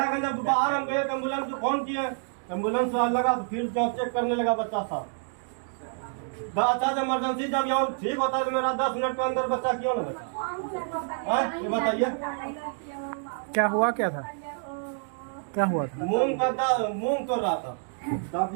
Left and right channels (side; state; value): left; silent; 59 dB below the other